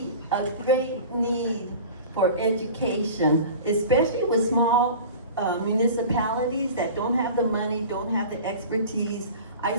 a great need for education, especially with small municipalities that don't have the money, don't have the expertise. I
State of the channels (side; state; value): both; inverted; correlation -0.38